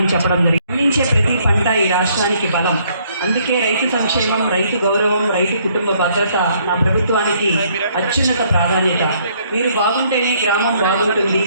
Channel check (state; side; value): inverted; both; correlation -0.66